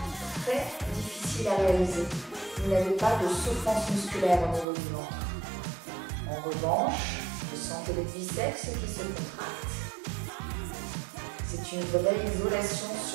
très difficile à réaliser. Vous n'avez pas de souffrance musculaire au niveau du ventre. En revanche, vous sentez les biceps qui se contractent. C'est une vraie isolation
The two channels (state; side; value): drops out; left; at 4.7 s